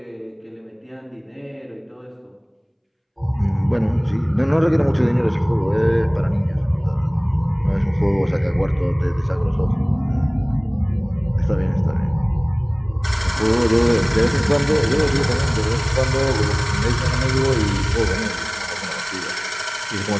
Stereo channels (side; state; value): both; identical; correlation 1.00